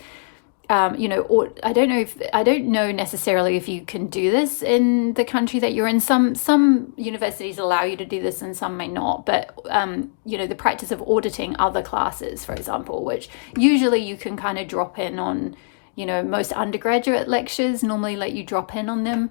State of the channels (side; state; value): right; silent; digital silence